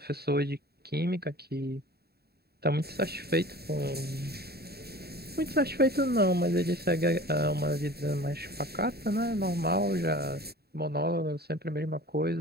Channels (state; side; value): late; left; 0.46 ms